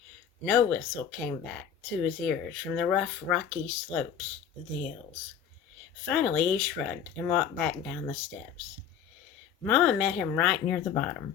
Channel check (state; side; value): quieter; right; 8.2 dB